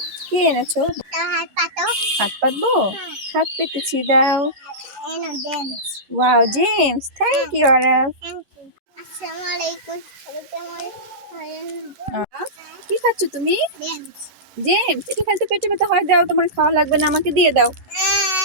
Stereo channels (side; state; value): left; late; 11 ms